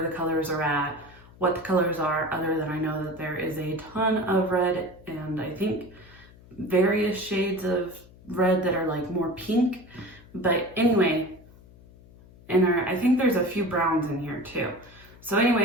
colors are at, what the colors are, other than I know that there is a ton of red and I think various shades of red that are like more pink. But anyway, I think there's a few browns in here too. So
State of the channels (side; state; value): left; noise; hum, 23 dB below the sound